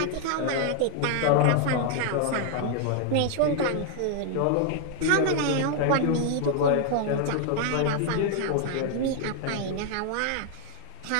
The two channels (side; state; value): both; different; correlation 0.00